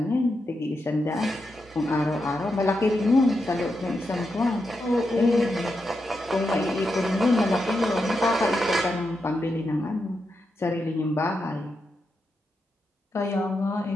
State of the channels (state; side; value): normal; both; correlation 0.86